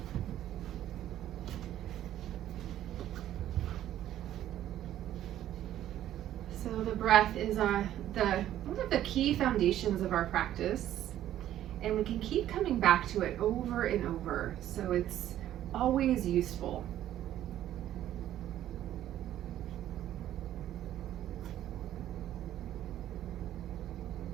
So the breath is one of the key foundations of our practice, and we can keep coming back to it over and over, so it's always useful.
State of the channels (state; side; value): quieter; left; 12.3 dB